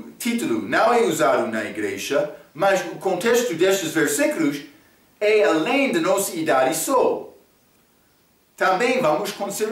não é usado na igreja, mas o contexto destes versículos é além da nossa idade só. Também vamos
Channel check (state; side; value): identical; both; correlation 1.00